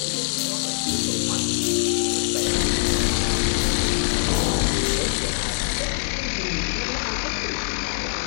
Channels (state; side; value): silent; right; digital silence